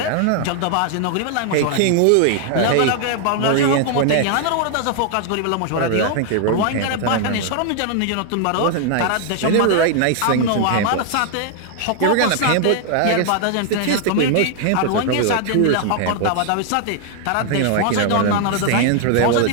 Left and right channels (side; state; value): both; different; correlation 0.00